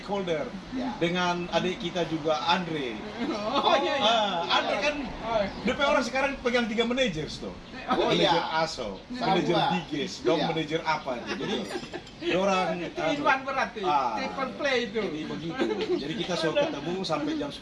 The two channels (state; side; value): identical; both; correlation 1.00